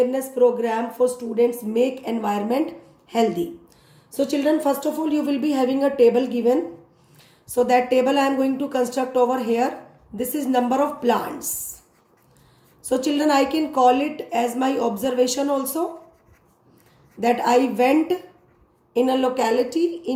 program for students make environment healthy. So children, first of all, you will be having a table given. So that table I am going to construct over here. This is number of plants. So children, I can call it as my observation also, that I went in a locality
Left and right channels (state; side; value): identical; both; correlation 1.00